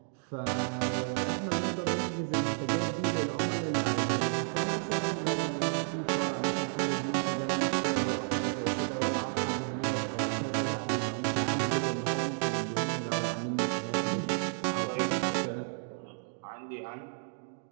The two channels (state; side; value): silent; left; digital silence